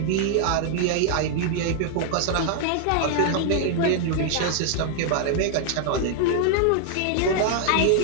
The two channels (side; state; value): both; different; correlation 0.00